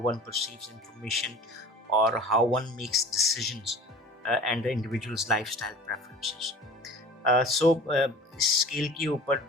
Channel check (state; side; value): normal; both; correlation 0.42